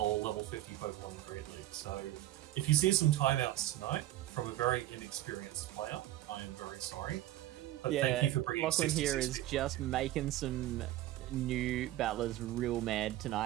level 50 Pokemon in Great League. So if you see some timeouts tonight from a very inexperienced player, I am very sorry. But thank you for bringing Lachlan 66 here is people. just making some new battlers real mad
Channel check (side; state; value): left; quieter; 14.8 dB